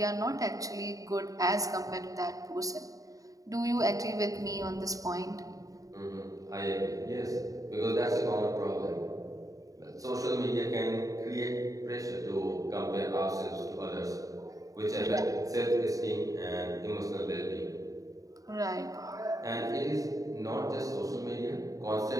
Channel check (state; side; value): late; left; 0.17 ms